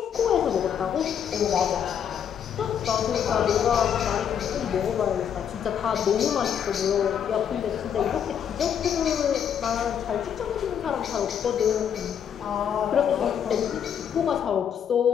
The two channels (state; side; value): quieter; right; 8.4 dB